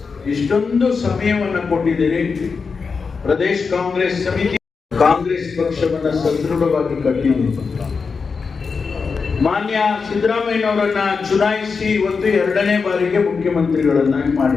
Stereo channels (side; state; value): right; quieter; 5.1 dB